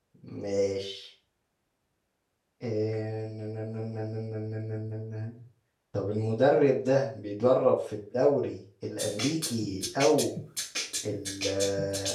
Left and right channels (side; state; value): both; identical; correlation 1.00